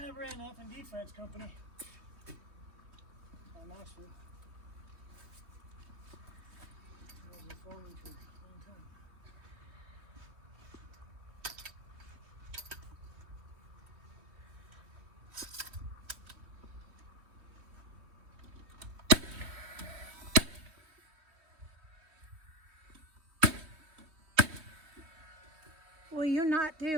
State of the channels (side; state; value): left; late; 3.2 ms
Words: I ran up in defense company. On Knoxville. I was a foreman for a long time. will you not